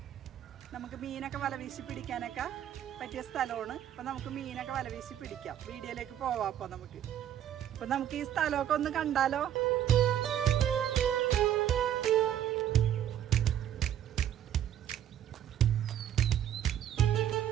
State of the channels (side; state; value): left; quieter; 10.7 dB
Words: നമുക്ക് മീനൊക്കെ വലവീശി പിടിക്കാനൊക്കെ പറ്റിയ സ്ഥലമാണ്. അപ്പോൾ നമുക്ക് മീനൊക്കെ വലവീശി പിടിക്കാം. വീഡിയോയിലേക്ക് പോവാം. അപ്പോൾ നമുക്ക് ഈ സ്ഥലമൊക്കെ ഒന്ന് കണ്ടാലോ?